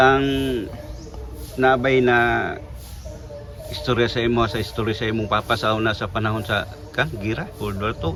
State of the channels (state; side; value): identical; both; correlation 1.00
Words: nabay na istorya sa imong papa sa una sa panahon sa gira World War II